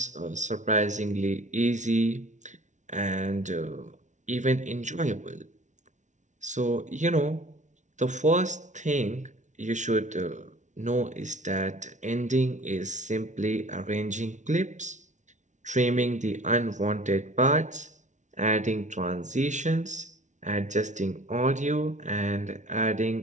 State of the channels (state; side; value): late; left; 0.36 ms